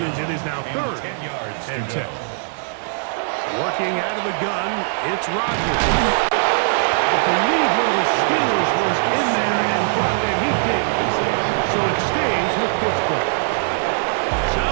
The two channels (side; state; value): left; silent; digital silence